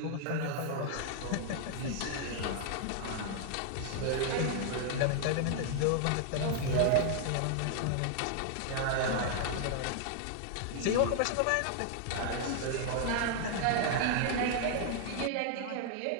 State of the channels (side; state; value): both; different; correlation 0.00